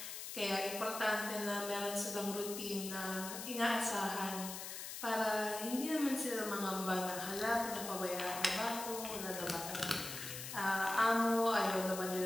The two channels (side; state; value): left; noise; hiss, 7 dB below the sound